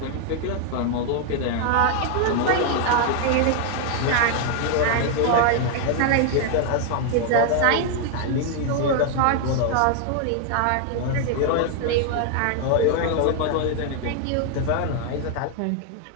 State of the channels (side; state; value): both; different; correlation 0.00